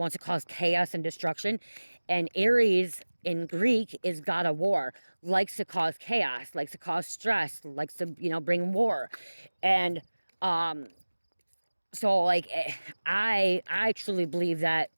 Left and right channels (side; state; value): both; inverted; correlation -1.00